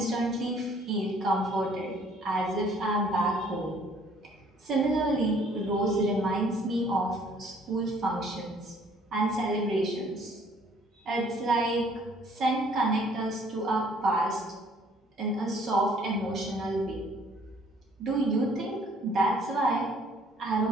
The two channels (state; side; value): normal; both; correlation 0.59